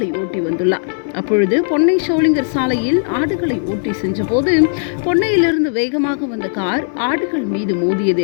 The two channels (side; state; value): right; silent; 68 dB below the other